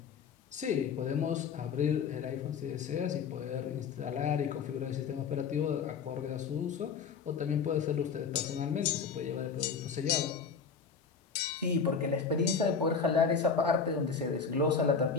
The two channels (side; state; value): right; quieter; 5.9 dB